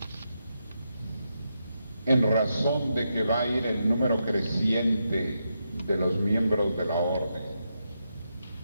en razón de que va a ir el número creciente de los miembros de la orden,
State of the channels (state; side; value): inverted; both; correlation -0.84